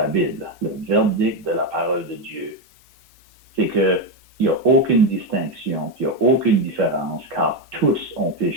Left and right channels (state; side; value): normal; both; correlation 0.08